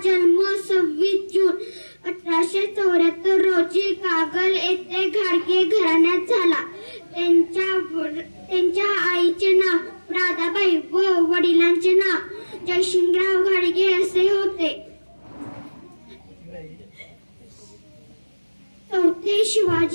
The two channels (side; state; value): both; inverted; correlation -1.00